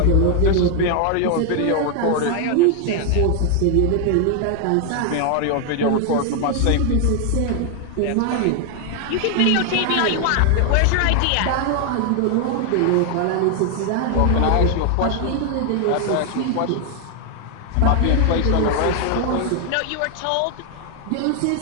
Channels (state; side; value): different; both; correlation 0.00